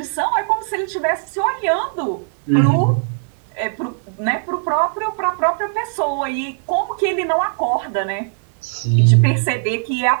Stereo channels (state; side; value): silent; left; digital silence